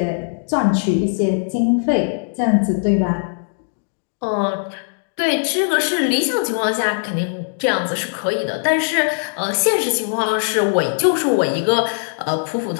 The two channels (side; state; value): right; silent; digital silence